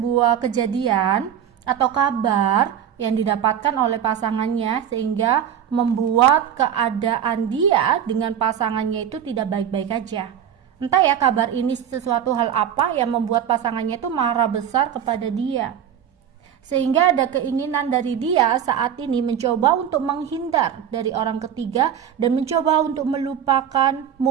kejadian atau kabar yang didapatkan oleh pasangannya sehingga membuat keadaan dia dengan pasangannya itu tidak baik-baik aja. Entah ya kabar ini sesuatu hal apa yang membuat pasangannya itu marah besar kepada dia. Sehingga ada keinginan dari dia saat ini mencoba untuk menghindar dari orang ketiga dan mencoba untuk melupakan,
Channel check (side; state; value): left; quieter; 9.1 dB